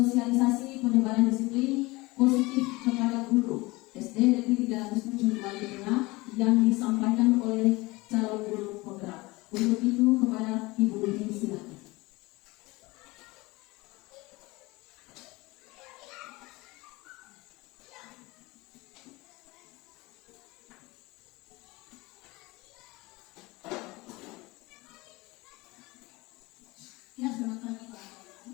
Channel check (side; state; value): right; quieter; 22.4 dB